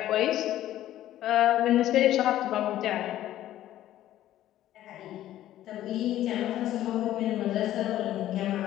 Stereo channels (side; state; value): right; quieter; 13.2 dB